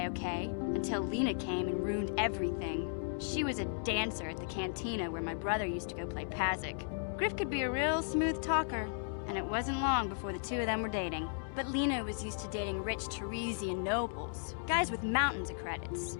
okay, until Lena came and ruined everything. She was a dancer at the cantina where my brother used to go play Pazik. Griff could be a real smooth talker, and it wasn't long before the two of them were dating. But Lena was used to dating rich Teresian nobles, guys with mountains of credits.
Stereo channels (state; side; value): silent; right; digital silence